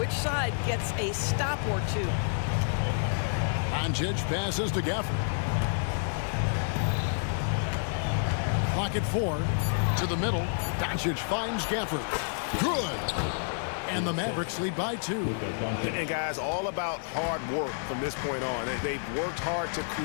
side gets a stop or two. Doncic passes to Gafford. Clock at 4. To the middle. Doncic finds Gafford. Good. And the Mavericks lead by 2. And guys, all about hard work from this point on. They've worked hard to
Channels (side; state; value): right; silent; digital silence